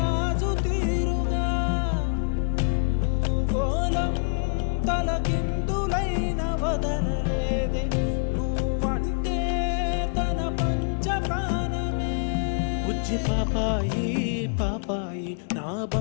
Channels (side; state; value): right; silent; 61 dB below the other